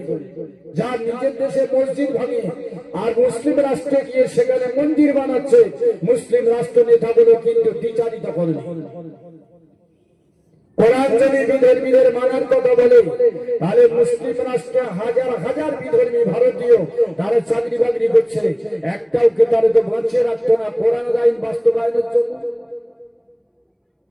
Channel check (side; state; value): both; identical; correlation 1.00